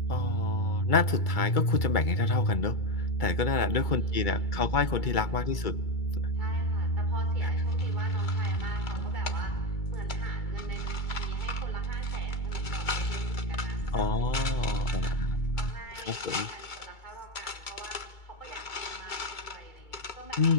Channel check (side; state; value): right; late; 2.3 ms